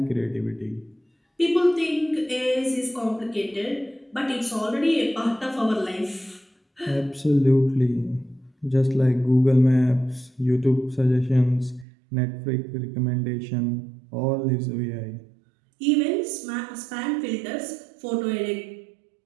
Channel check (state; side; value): drops out; left; at 11.9 s